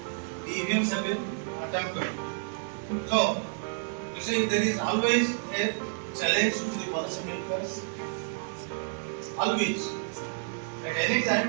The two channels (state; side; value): silent; left; digital silence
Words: So, you see, there is always a challenge to the policymakers. Always. At any